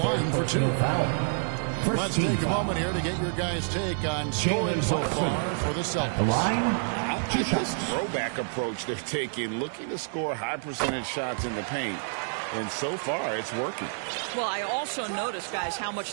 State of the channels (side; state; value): left; silent; 56 dB below the other